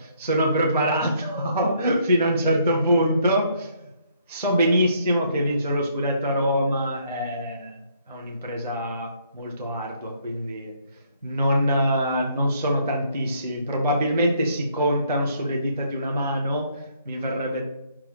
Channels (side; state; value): both; inverted; correlation -0.67